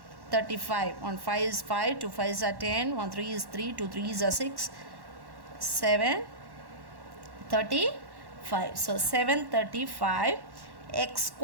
35, 1 5 is 5, 2 5 is 10, 1 3 is 3, 2 3 is 6, 7 35. So 735 x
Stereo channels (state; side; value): late; left; 1.1 ms